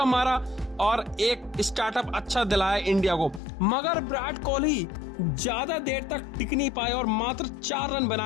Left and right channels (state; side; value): drops out; right; at 3.4 s